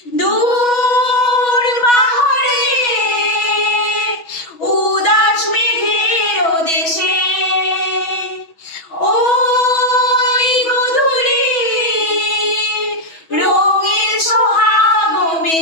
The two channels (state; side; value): late; right; 6.1 ms